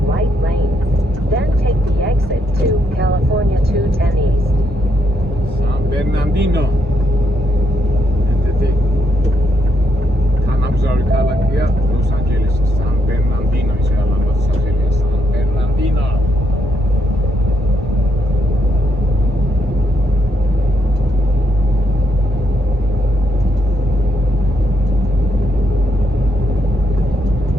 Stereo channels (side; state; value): both; normal; correlation 0.77